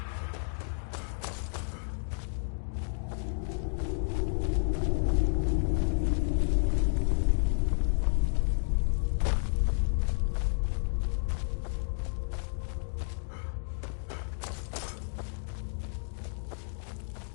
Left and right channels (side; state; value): right; silent; digital silence